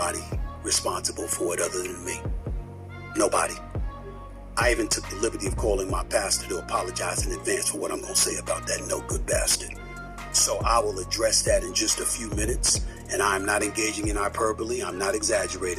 responsible for it other than me. Nobody. I even took the liberty of calling my pastor to apologize in advance for what I'm going to say about that no good bastard. So I will address that in just a few minutes, and I'm not engaging in hyperbole. I'm not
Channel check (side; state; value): both; identical; correlation 1.00